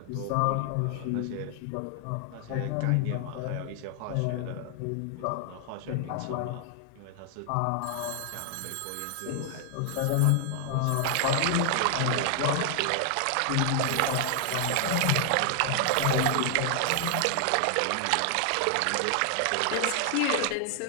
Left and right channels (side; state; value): both; different; correlation 0.00